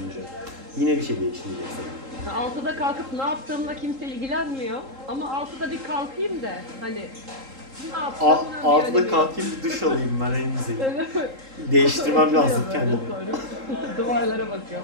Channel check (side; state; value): left; late; 3.7 ms